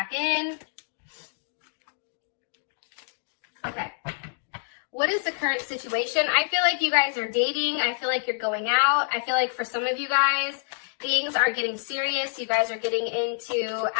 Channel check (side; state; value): right; silent; digital silence